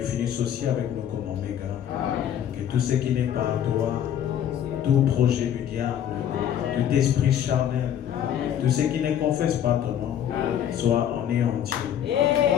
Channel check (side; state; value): right; quieter; 9.9 dB